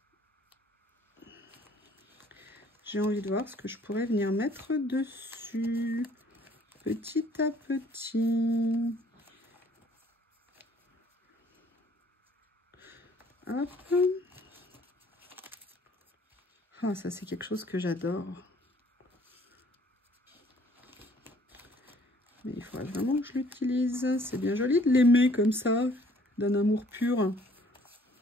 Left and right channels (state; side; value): normal; both; correlation 0.58